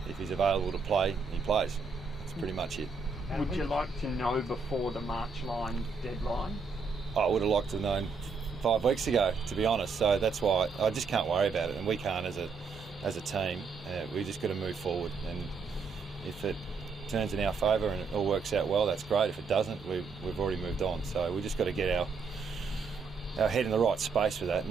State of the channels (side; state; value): left; quieter; 4.8 dB